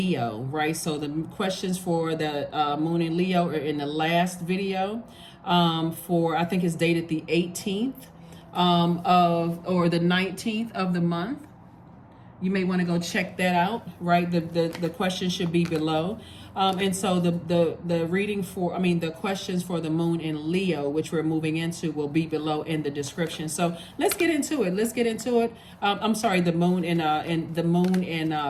right? So the questions for the moon in Leo are in the last video I think it's dated the 18th or the 19th of the month. You may want to go check that out, right? The question should be below. And so the reading the questions for the moon in Leo, which we're moving into, will be below in the description. So let's get into it. I'm sorry, the moon in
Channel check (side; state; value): both; identical; correlation 1.00